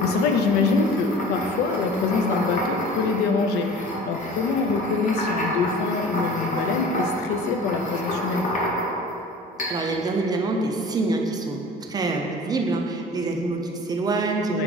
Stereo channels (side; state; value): both; normal; correlation 0.42